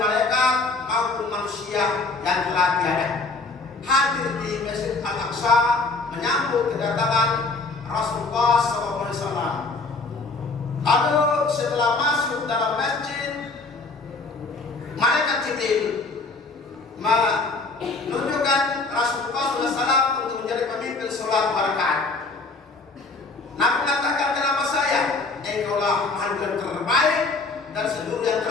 maupun manusia yang telah tiada, hadir di Masjid Al-Aqsa menyambut kedatangan Rasulullah SAW. Lalu setelah masuk dalam masjid, malaikat Jibril menunjukkan Rasulullah SAW untuk menjadi pemimpin sholat 2 rakaat. Nabi katakan, kenapa saya? Engkaulah makhluk yang terbaik dan seluruh yang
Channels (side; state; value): right; quieter; 3.7 dB